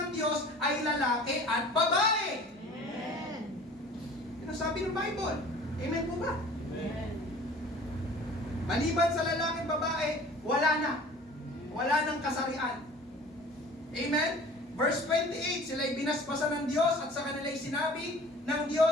Diyos ay lalaki at babae. Amen. Yan ang sabi ng Bible. Amen po ba? Amen. Maliban sa lalaki at babae, wala na. Wala nang kasarian. Amen? Verse 28, sila'y binasbasan ng Diyos at sa kanila'y sinabi ng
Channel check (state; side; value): normal; both; correlation 0.46